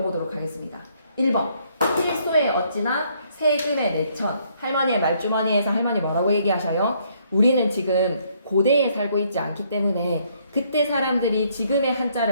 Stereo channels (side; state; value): both; inverted; correlation -0.68